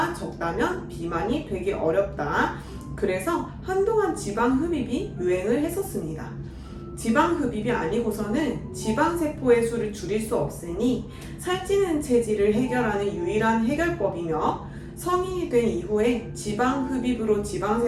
적다면 비만이 되기 어렵다. 그래서 한동안 지방 흡입이 유행을 했었습니다. 지방 흡입이 아니고서는 지방세포의 수를 줄일 수 없으니 살찌는 체질을 해결하는 유일한 해결법이며 성인이 된 이후에 지방 흡입으로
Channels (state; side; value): identical; both; correlation 1.00